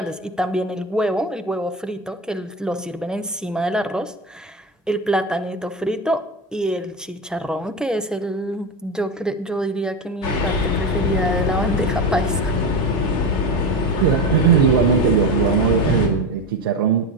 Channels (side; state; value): both; normal; correlation 0.20